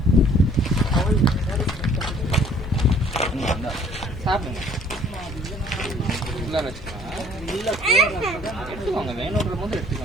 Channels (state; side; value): normal; both; correlation 0.57